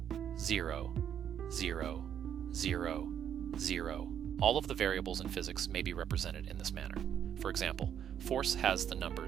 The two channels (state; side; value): quieter; left; 9.2 dB